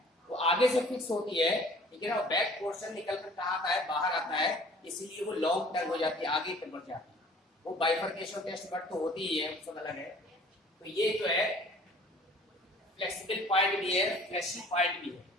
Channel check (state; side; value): normal; both; correlation 0.51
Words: वो आगे से फिक्स होती है, ठीक है ना, बैक पोर्शन निकल कर कहाँ आता है, बाहर आता है, इसीलिए वो लॉन्ग टंग हो जाती है, आगे तक बढ़ जाती है। वो बाइफर्केशन टेस्ट बट तो होती ही है, सब अलग है। तो ये जो है फ्लेक्सिबल पार्ट भी है, फ्लैशी पार्ट भी है,